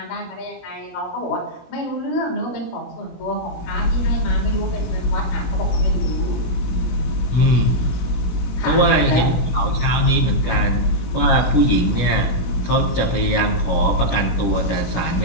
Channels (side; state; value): right; late; 16 ms